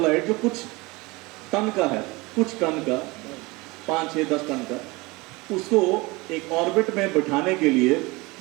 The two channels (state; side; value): quieter; left; 23.7 dB